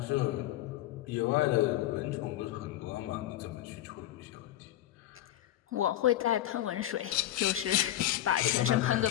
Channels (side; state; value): right; quieter; 13.6 dB